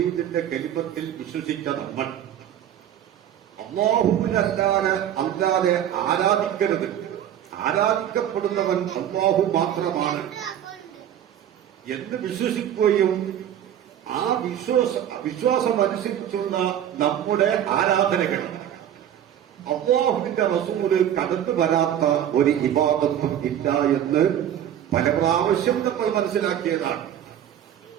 കലിമത്തിൽ വിശ്വസിച്ച നമ്മൾ അല്ലാതെ ആരാധിക്കരുത്. ആരാധിക്കപ്പെടുന്നവൻ അല്ലാഹു മാത്രമാണ് എന്ന് വിശ്വസിക്കുകയും ആ വിശ്വാസം അനുസരിച്ചുള്ള നമ്മുടെ ആരാധനകൾ അല്ലാഹുവിന്റെ റസൂല് കടന്നു വരാത്ത ഒരു ഇബാദത്തും ഇല്ല എന്ന് പല പ്രാവശ്യം നമ്മൾ മനസ്സിലാക്കിയതാണ്.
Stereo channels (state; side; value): quieter; left; 10.5 dB